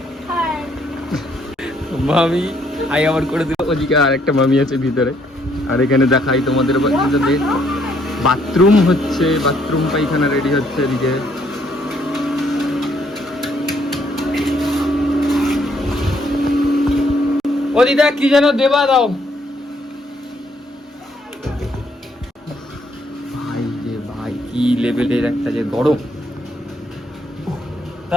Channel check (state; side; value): normal; both; correlation 0.69